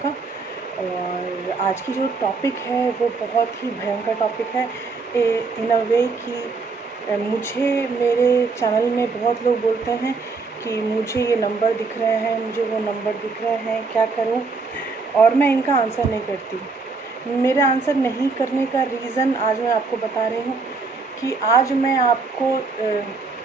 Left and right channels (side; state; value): left; quieter; 4.3 dB